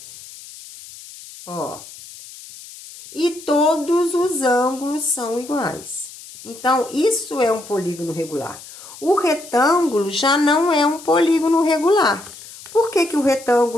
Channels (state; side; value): noise; left; hiss, 17 dB below the sound